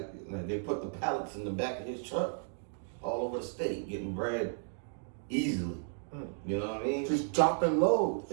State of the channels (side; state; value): left; silent; digital silence